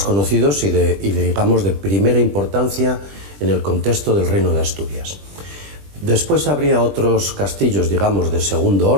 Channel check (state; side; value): late; left; 20 ms